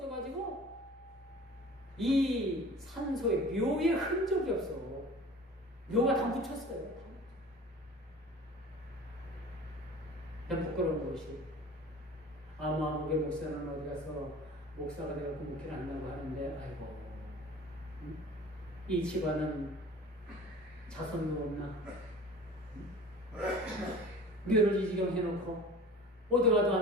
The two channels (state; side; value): normal; both; correlation 0.41